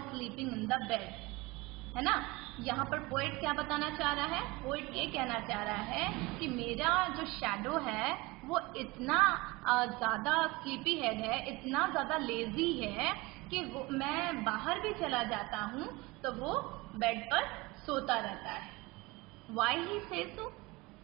sleeping in the bed, है ना? यहाँ पर poet क्या बताना चाह रहा है? Poet ये कहना चाह रहा है कि मेरा जो शैडो है वो इतना ज़्यादा स्लीपी हेड है, इतना ज़्यादा लेजी है कि मैं बाहर भी चला जाता हूँ तो वो बेड पर सोता रहता है। Why he says so?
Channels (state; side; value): quieter; left; 22.9 dB